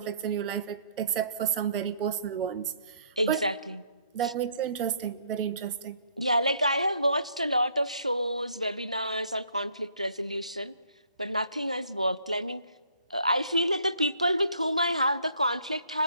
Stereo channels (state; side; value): inverted; both; correlation -0.62